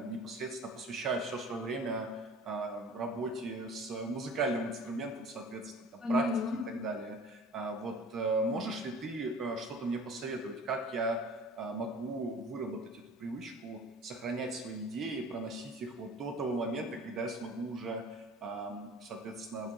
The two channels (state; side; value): normal; both; correlation 0.43